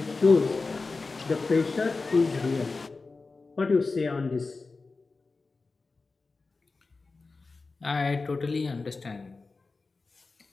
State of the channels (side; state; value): right; quieter; 3.9 dB